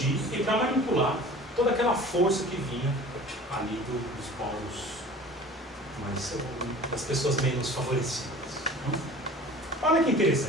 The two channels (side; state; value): both; normal; correlation 0.43